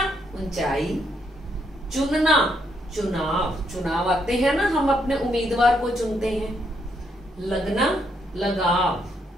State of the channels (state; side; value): normal; both; correlation 0.75